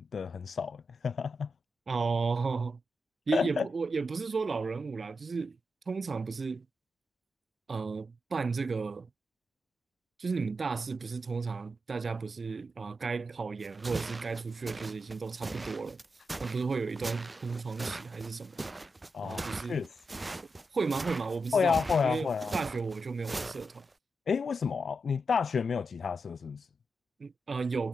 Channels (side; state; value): both; normal; correlation 0.86